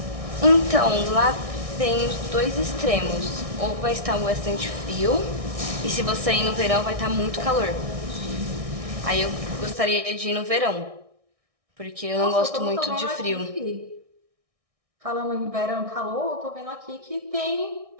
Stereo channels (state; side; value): late; left; 1.6 ms